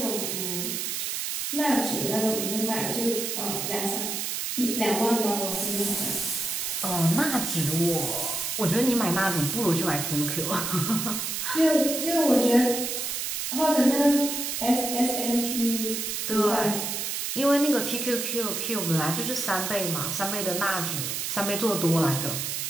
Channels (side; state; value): right; noise; hiss, 2 dB below the sound